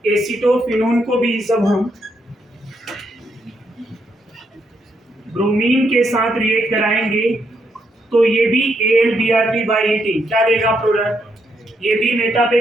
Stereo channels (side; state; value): both; normal; correlation 0.77